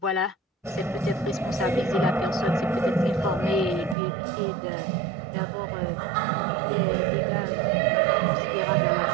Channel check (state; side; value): drops out; left; at 4.0 s